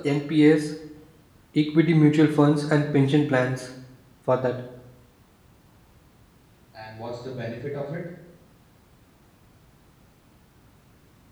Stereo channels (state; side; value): identical; both; correlation 1.00